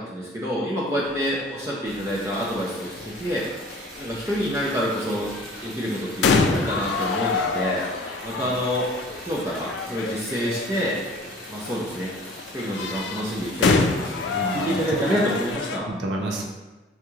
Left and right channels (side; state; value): both; normal; correlation 0.47